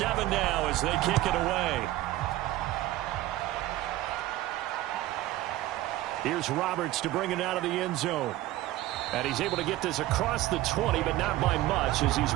now as they kick it away. Here's Roberts to bring it out of the end zone. And he's able to get this across the 20, but not by much as he's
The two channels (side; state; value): left; quieter; 16.0 dB